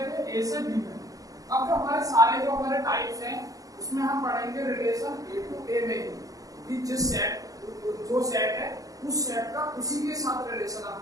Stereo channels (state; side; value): late; left; 0.17 ms